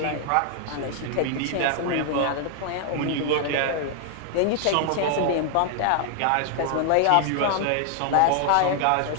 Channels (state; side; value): different; both; correlation 0.00